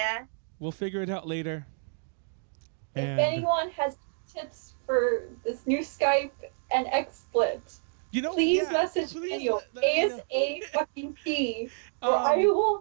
We'll figure it out later. If anyone has tips for this new Skype and XSplit, please message Daniel ASAP, or I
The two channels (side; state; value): left; silent; digital silence